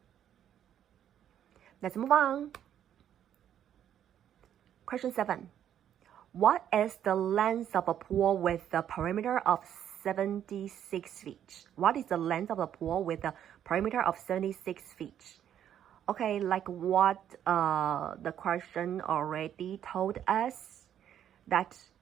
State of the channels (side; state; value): left; quieter; 10.1 dB